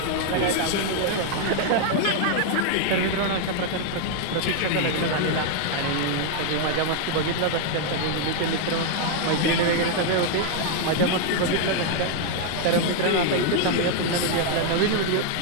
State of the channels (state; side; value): different; both; correlation 0.00